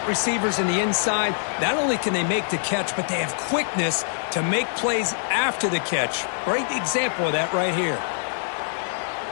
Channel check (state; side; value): silent; right; 62 dB below the other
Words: receivers in the inside, not only can they make the catch, but they have quickness to make plays after the catch. Great example of that right here.